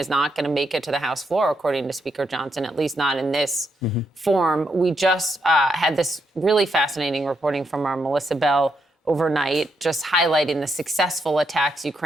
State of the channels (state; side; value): normal; both; correlation 0.79